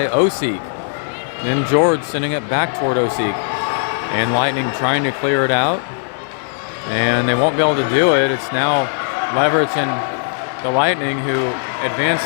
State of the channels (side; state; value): right; silent; digital silence